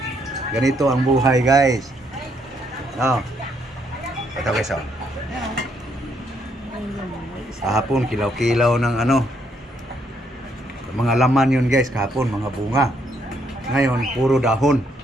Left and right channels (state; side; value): normal; both; correlation 0.72